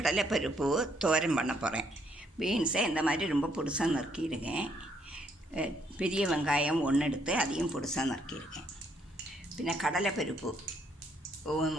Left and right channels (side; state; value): both; normal; correlation 0.70